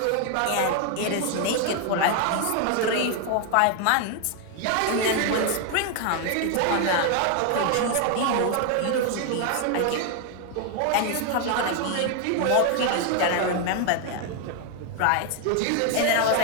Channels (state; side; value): different; both; correlation 0.01